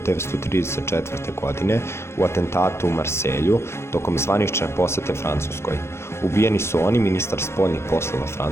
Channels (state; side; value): late; right; 0.13 ms